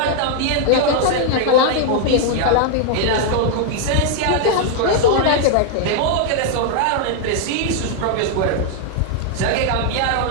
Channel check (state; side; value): different; both; correlation 0.00